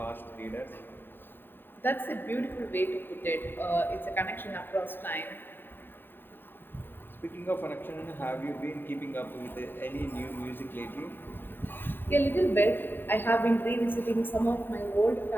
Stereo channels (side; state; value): right; late; 0.095 ms